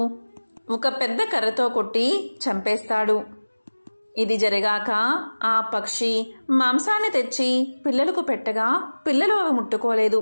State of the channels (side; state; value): both; inverted; correlation -1.00